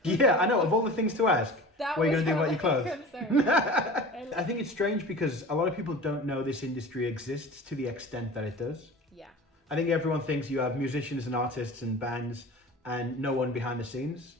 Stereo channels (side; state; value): both; normal; correlation 0.37